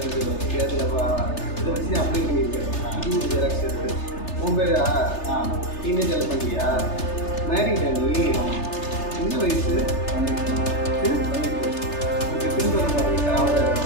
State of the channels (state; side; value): late; right; 3.3 ms